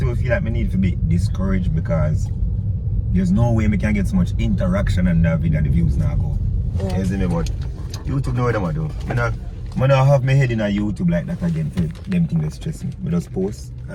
even feel like I need to be discouraged because there's no way I can get so much interaction on that video and the views now go. Yeah. You see me? But YouTube know what I'm do. I don't have my head in a YouTube like that again for them things that stress me. I just post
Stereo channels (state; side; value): identical; both; correlation 1.00